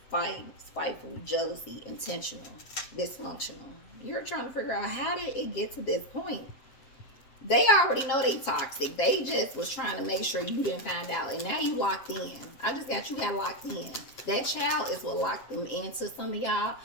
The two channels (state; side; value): late; right; 7.4 ms